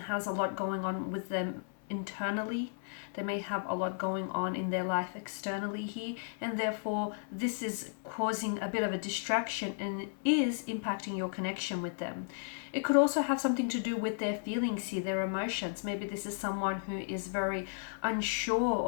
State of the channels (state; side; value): silent; right; 55 dB below the other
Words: has a lot going on with them internally. They may have a lot going on in their life externally here, and therefore this is causing a bit of a distraction and is impacting your connection with them. It could also have something to do with their feelings here, their emotions. Maybe this is someone who is very unsure